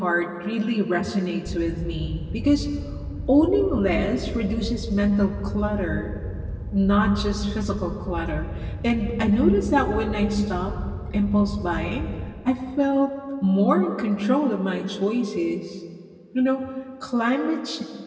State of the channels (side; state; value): both; identical; correlation 1.00